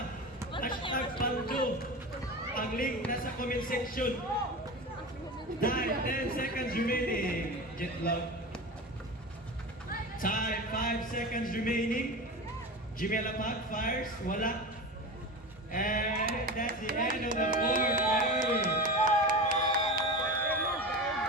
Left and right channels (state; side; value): normal; both; correlation 0.27